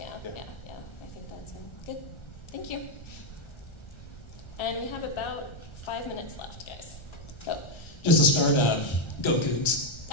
I think that's good. Thank you. And we have about 5 minutes left, guys. Go. Just to start, go Cougs.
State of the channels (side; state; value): right; late; 1.3 ms